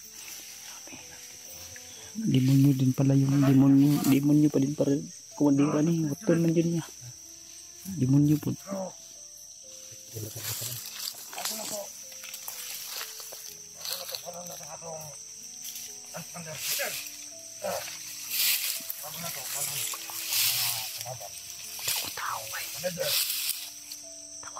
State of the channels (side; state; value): both; identical; correlation 1.00